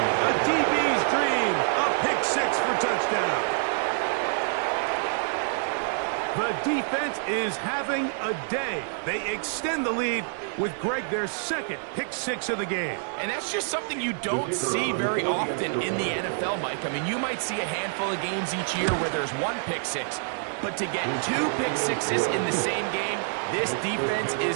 A DB's dream, a pick 6 for touchdown. The defense is having a day. They extend the lead with Greg their 2nd pick 6 of the game. And that's just something you don't see very often in the NFL, Mike. I mean, you might see a handful of games each year where there's 1 pick 6, but to get 2 pick 6s in the same game, this defense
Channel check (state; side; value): silent; left; digital silence